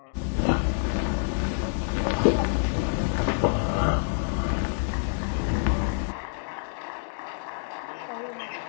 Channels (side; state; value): right; silent; digital silence